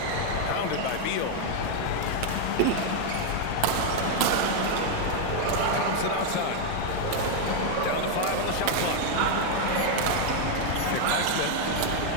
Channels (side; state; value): both; different; correlation 0.00